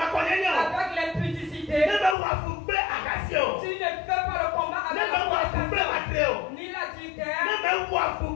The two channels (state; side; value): drops out; right; at 2.1 s